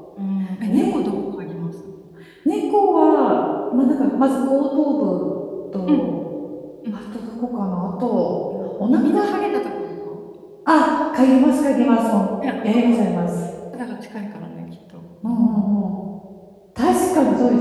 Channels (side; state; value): both; identical; correlation 1.00